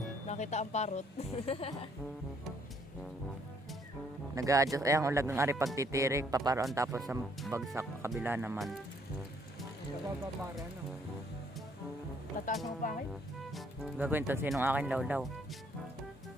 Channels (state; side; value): normal; both; correlation 0.66